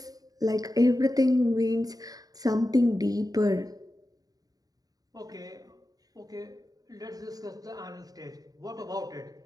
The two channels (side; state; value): left; late; 0.18 ms